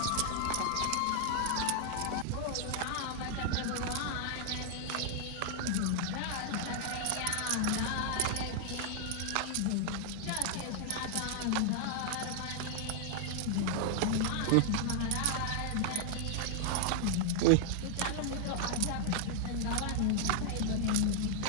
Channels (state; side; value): different; both; correlation 0.00